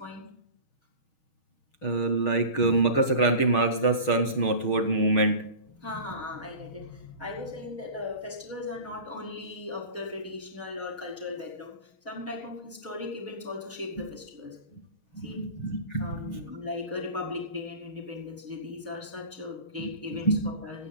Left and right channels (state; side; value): late; right; 6.3 ms